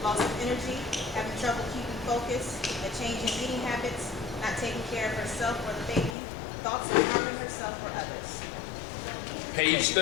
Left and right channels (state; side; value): drops out; right; at 6.2 s